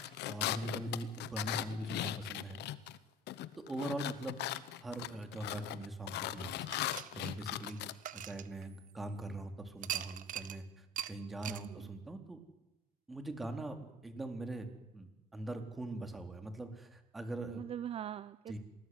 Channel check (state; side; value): normal; both; correlation 0.44